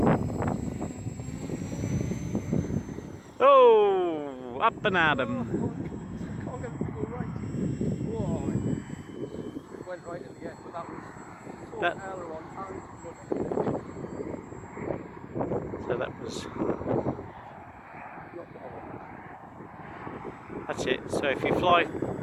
Oh, up and at 'em. Can't get it to go right. Whoa. It went right at the end, but that was That- aileron and So that's it. So if you fly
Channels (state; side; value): identical; both; correlation 1.00